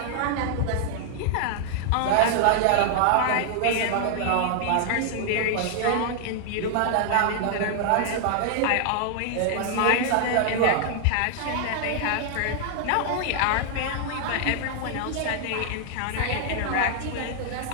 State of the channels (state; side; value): different; both; correlation 0.00